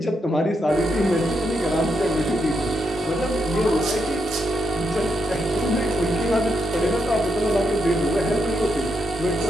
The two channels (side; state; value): both; normal; correlation 0.81